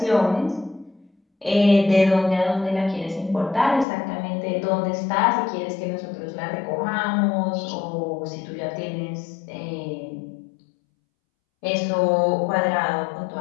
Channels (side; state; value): right; drops out; at 3.9 s